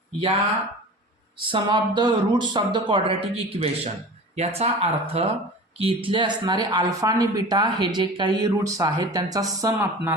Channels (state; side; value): normal; both; correlation 0.36